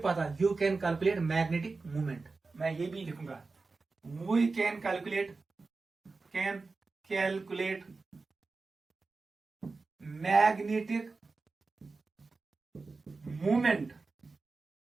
पता, you can calculate magnetic movement. मैं ये भी लिखूंगा, we can calculate magnetic movement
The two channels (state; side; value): quieter; left; 3.9 dB